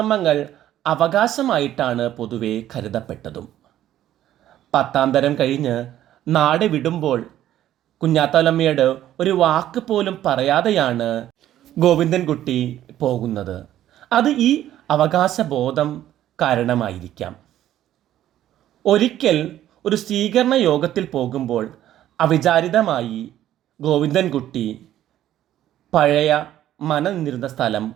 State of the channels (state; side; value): quieter; left; 12.4 dB